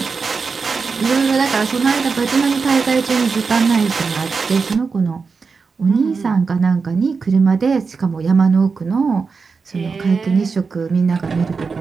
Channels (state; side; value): quieter; left; 4.9 dB